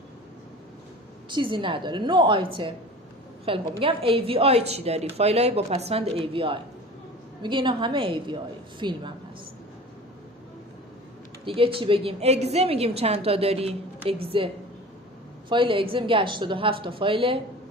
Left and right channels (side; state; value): both; normal; correlation 0.39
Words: چیزی نداره، نو آیتم. خیلی خوب. میگم AVI چی داری؟ فایلای با پسوند AVI، میگه اینا همه AVI، فیلم هم هست. دیگه چی بگیم؟ اگزه میگیم چند تا داری؟ اگزه، فایل اگزه میگه 87 تا فایل